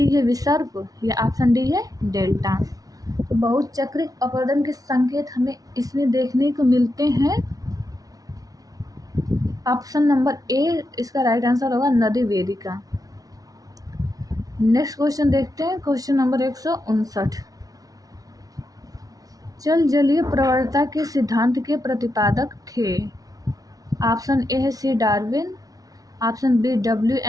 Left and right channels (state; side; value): late; left; 0.18 ms